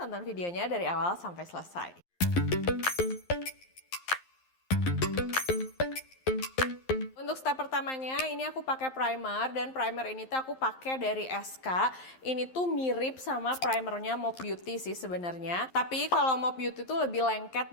videonya dari awal sampai selesai. Untuk step pertamanya, ini aku pakai primer dan primer ini tuh aku pakai dari SK. Ini tuh mirip sama primernya Mop Beauty sih sebenarnya. Tapi kalau Mop Beauty tuh lebih lengket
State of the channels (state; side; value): late; right; 11 ms